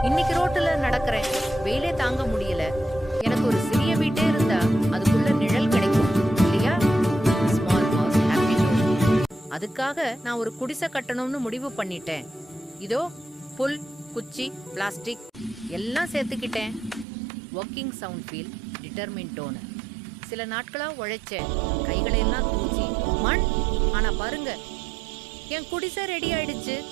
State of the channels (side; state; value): left; drops out; at 17.1 s